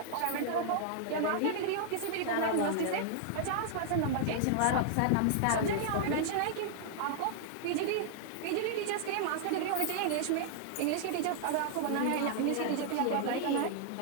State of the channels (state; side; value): different; both; correlation -0.01